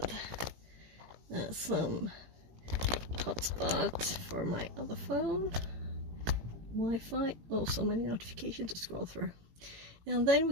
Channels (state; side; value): late; left; 18 ms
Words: And some hotspot for my other phone. Wi-Fi. Oh, so many notifications to scroll through. And then we're